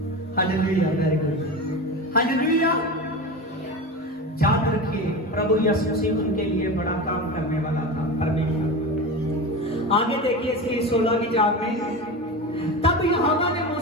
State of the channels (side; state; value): both; normal; correlation 0.25